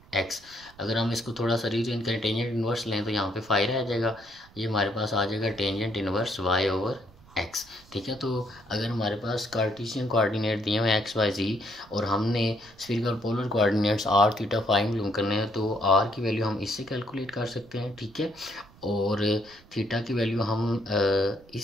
X. अगर हम इसको थोड़ा सा रीअरेंज करें, टेंजेंट इन्वर्स लें, तो यहाँ पे फाई रह जाएगा, ये हमारे पास आ जाएगा tangent inverse Y over X. ठीक है, तो अगर हमारे पास कार्टेशियन कोऑर्डिनेट दिए हुए एक्स वाई जी, और हमने spherical polar coordinates r theta phi मालूम करने हैं, तो आर की वैल्यू हम इससे कैलकुलेट कर सकते हैं, ठीक है, और थीटा की वैल्यू हम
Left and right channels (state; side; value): noise; right; rumble, 25 dB below the sound